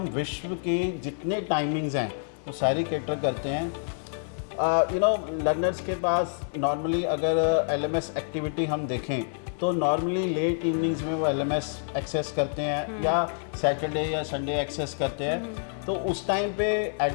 विश्व की जितने टाइमिंग्स हैं वो सारी कैटर करते हैं। लर्नर्स के पास नॉर्मली अगर LMS एक्टिविटी हम देखें तो नॉर्मली लेट इवनिंग्स में वो LMS एक्सेस करते हैं या सैटरडे या संडे एक्सेस करते हैं। तो उस टाइम पे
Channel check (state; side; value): silent; right; digital silence